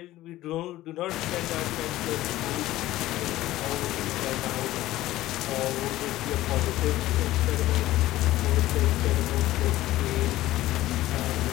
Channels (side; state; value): right; quieter; 15.9 dB